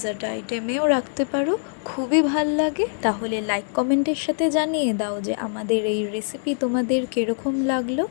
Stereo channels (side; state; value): right; silent; digital silence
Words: আইটেমেও রাখতে পারো, খুবই ভাল লাগে। তাহলে লাইক কমেন্টের সাথে জানিয়ে দাও যে আমাদের এই রেসিপি তোমাদের কীরকম লাগলো,